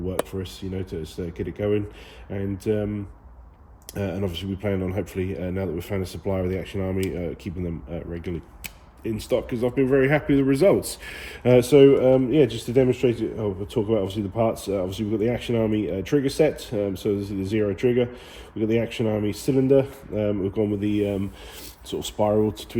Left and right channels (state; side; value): identical; both; correlation 1.00